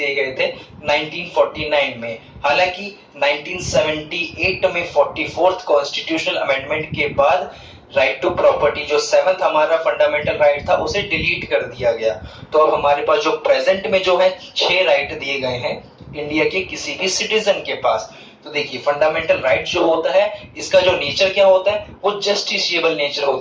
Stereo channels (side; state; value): both; identical; correlation 1.00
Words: गए थे 1949 में। हालांकि 1978 में 44th कॉन्स्टिट्यूशनल अमेंडमेंट के बाद राइट टू प्रॉपर्टी, जो 7th हमारा फंडामेंटल राइट था, उसे डिलीट कर दिया गया। तो अब हमारे पास जो प्रेजेंट में जो है 6 राइट दिए गए हैं इंडिया के किसी भी सिटीजन के पास। तो देखिए फंडामेंटल राइट जो होता है, इसका जो नेचर क्या होता है, वो जस्टिसिएबल नेचर